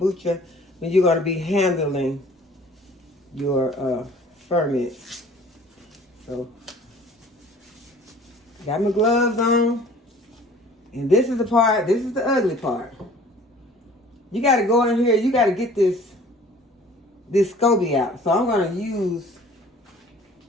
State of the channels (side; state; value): both; normal; correlation 0.50